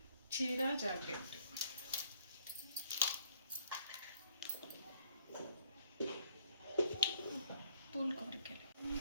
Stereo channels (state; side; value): inverted; both; correlation -0.65